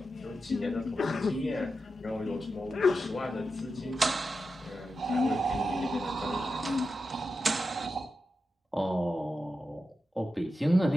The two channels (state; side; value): normal; both; correlation 0.89